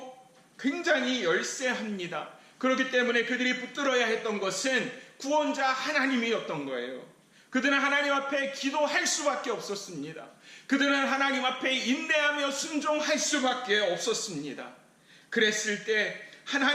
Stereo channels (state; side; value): identical; both; correlation 1.00